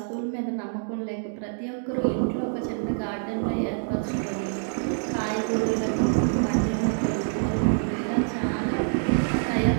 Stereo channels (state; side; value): silent; left; digital silence